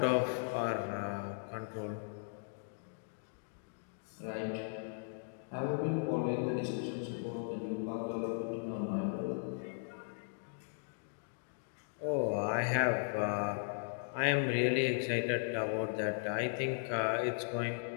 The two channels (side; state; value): right; silent; digital silence